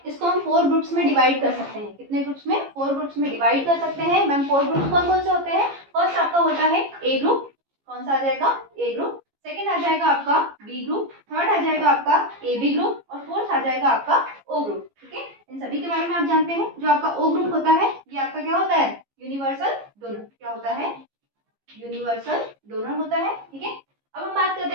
इसको हम 4 ग्रुप्स में डिवाइड कर सकते हैं। कितने ग्रुप्स में? 4 ग्रुप्स में डिवाइड कर सकते हैं। मैम 4 ग्रुप्स कौन कौन से होते हैं? फर्स्ट आपका होता है ए ग्रुप। कौन सा आ जाएगा? ए ग्रुप। सेकंड आ जाएगा आपका बी ग्रुप, थर्ड आ जाएगा आपका ए बी ग्रुप, और फोर्थ आ जाएगा आपका ओ ग्रुप। ठीक है, इन सभी के बारे में आप जानते हैं। जो आपका ओ ग्रुप होता है ये आपका क्या होता है? Universal donor. क्या होता है? यूनिवर्सल डोनर होता है। ठीक है, अब हम बात करते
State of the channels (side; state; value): left; late; 15 ms